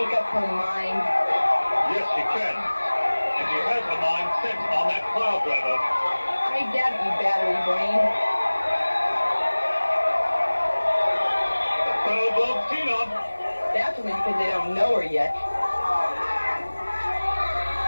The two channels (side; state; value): both; inverted; correlation -1.00